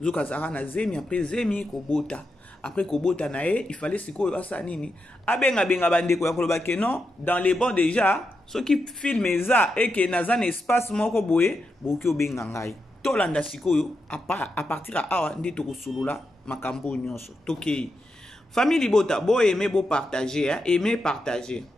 zoka zara na zemi après zemi kobota après kobota na ye il fallait sikoyo asa nini abenga bandeko ya koloba ke non dans les bons déjà ce qui filme eza et que na zan espace moko boye boki obenga ngai tolanda sikoyo à partir à awa ndi to kosolola makambo nyonso tokei. Famille Libota, beau aimer, beau partager, hein? Aimer, partager.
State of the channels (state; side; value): normal; both; correlation 0.86